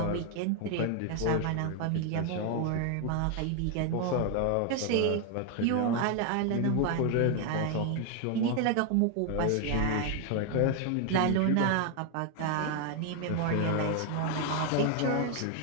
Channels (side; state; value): both; different; correlation 0.01